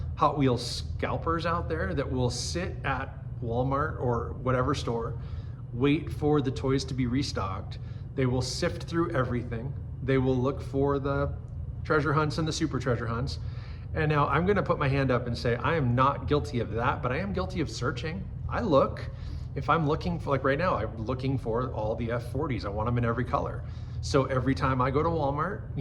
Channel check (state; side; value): identical; both; correlation 1.00